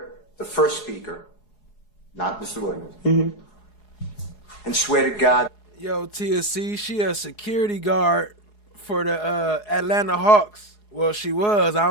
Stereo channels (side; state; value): right; late; 4.8 ms